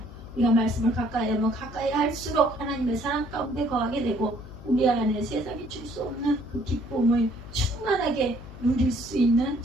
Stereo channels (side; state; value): left; noise; hum, 15 dB below the sound